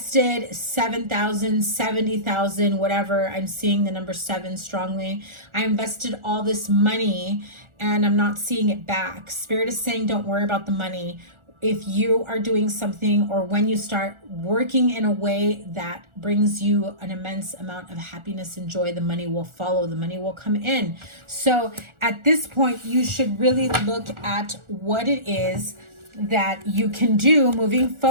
7,000, 70,000, whatever. I'm seeing the number 7 strongly. I invested all this money and I'm not seeing it back. Spirit is saying, don't worry about the money. If you are doing something, or when you start working in a way that brings you an immense amount of happiness and joy, the money will follow, the money will come in. So at this point, you should really look at what it is that you can do moving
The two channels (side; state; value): left; late; 1.4 ms